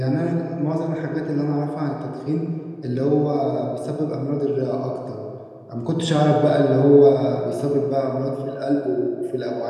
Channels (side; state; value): both; identical; correlation 1.00